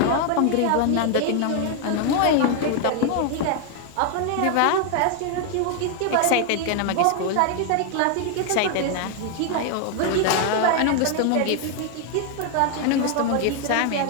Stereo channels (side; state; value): both; different; correlation 0.00